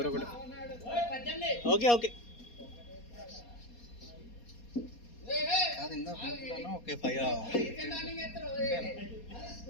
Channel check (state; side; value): late; right; 4.2 ms